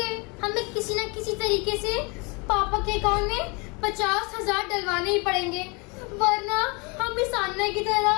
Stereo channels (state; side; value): quieter; right; 29.9 dB